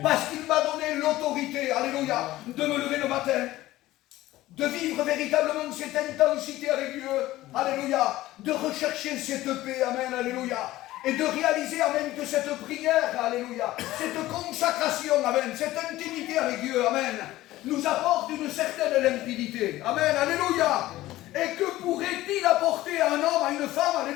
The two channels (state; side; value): quieter; right; 16.3 dB